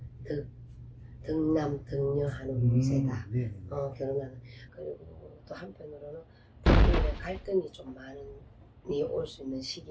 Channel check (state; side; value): identical; both; correlation 1.00